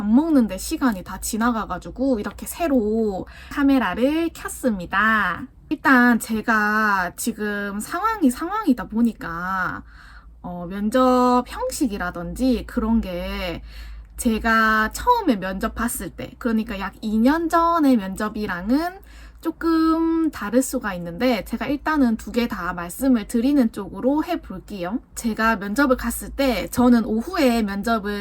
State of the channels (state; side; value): identical; both; correlation 1.00